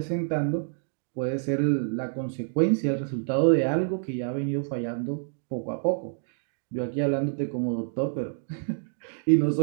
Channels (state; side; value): silent; left; digital silence